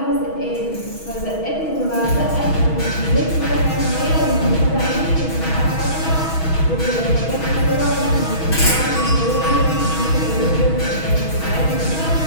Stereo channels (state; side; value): late; right; 6.2 ms